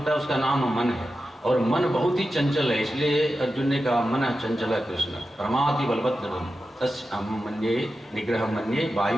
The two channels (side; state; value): both; normal; correlation 0.91